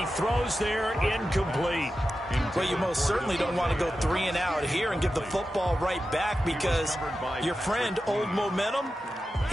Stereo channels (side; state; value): both; normal; correlation 0.92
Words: throws there, incomplete. Well, you most certainly don't want to go 3 and out here and give the football right back because your friend, Old Momentum,